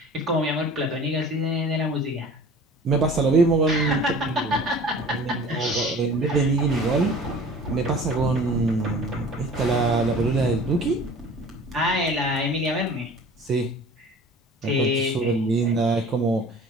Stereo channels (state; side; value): normal; both; correlation 0.44